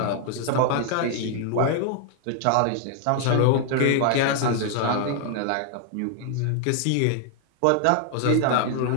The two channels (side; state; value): both; different; correlation 0.00